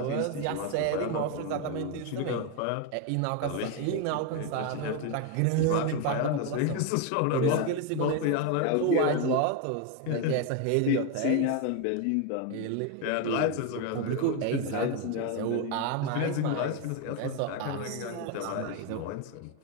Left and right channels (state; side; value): different; both; correlation 0.02